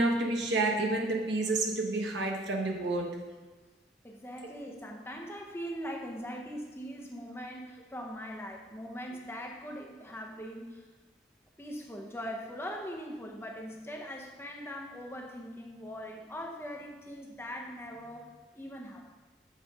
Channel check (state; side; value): normal; both; correlation 0.55